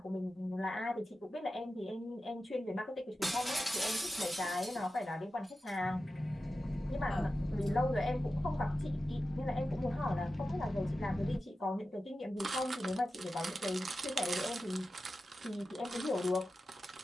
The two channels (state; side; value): normal; both; correlation 0.93